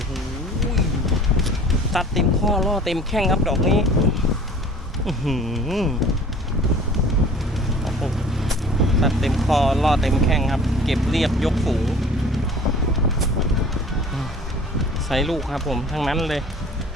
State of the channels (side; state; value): both; normal; correlation 0.47